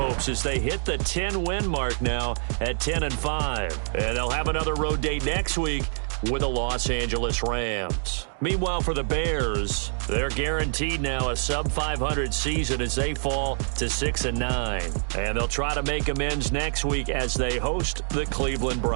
as they hit the 10-win mark now at 10-5. And they'll have another road date next week with the Los Angeles Rams. Meanwhile, for the Bears, they're guaranteed now a sub-500 season as they fall to 6-9. And they'll try to make amends next week as they host the Cleveland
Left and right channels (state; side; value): silent; left; digital silence